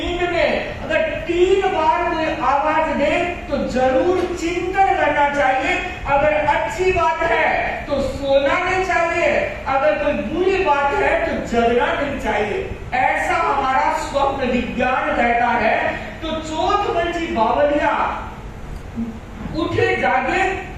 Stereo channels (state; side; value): identical; both; correlation 1.00